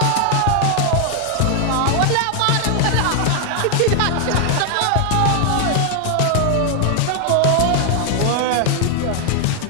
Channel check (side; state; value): both; different; correlation 0.00